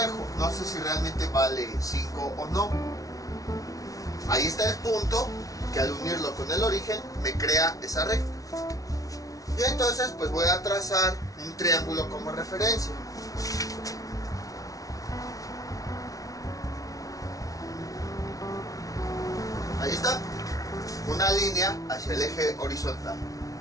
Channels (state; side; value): late; right; 0.17 ms